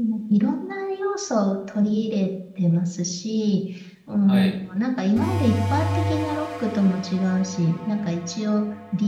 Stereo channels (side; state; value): both; identical; correlation 1.00